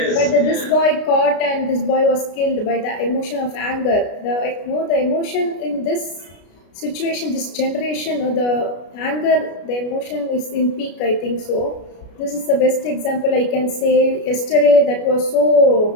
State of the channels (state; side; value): late; right; 33 ms